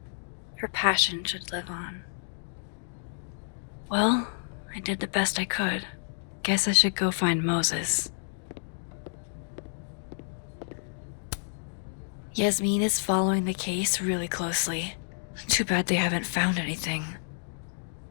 Her passion should live on. Well, I did the best I could. Guess I should go find Moses. Yasmin is following the case really closely. Too bad they haven't found anything.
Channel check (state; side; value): silent; right; digital silence